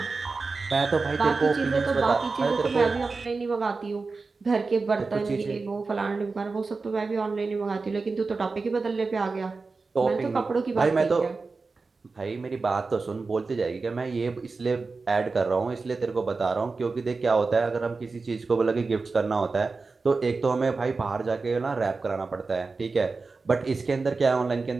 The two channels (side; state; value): left; quieter; 4.1 dB